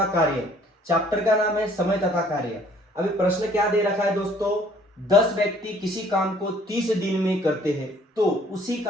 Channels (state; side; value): normal; both; correlation 0.58